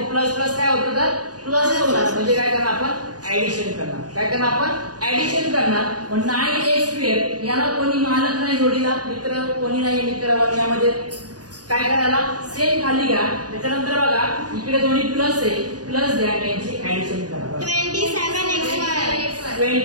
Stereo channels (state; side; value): late; left; 0.68 ms